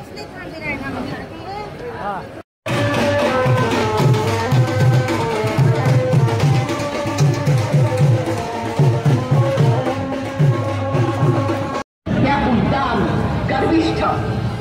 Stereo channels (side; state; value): both; identical; correlation 1.00